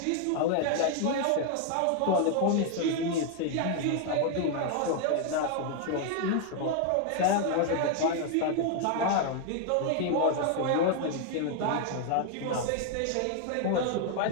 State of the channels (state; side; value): different; both; correlation 0.00